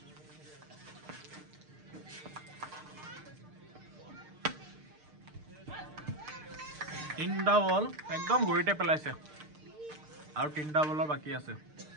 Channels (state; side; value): late; left; 6.6 ms